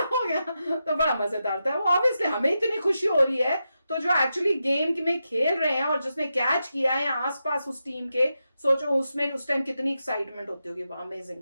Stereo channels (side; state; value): both; inverted; correlation -0.88